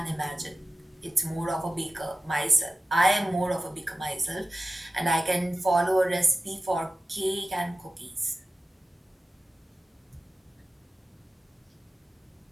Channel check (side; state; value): both; normal; correlation 0.95